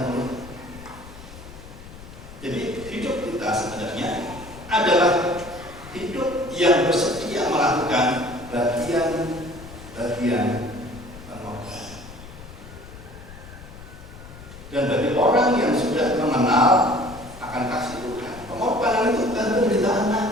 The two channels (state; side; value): noise; left; rumble, 16 dB below the sound